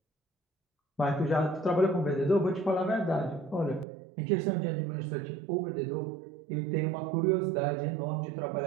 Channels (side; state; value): left; drops out; at 3.9 s